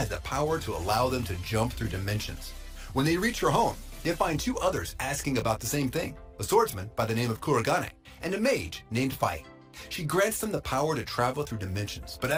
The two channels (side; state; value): both; identical; correlation 1.00